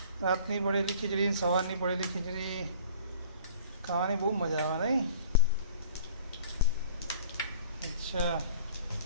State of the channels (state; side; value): inverted; both; correlation -0.49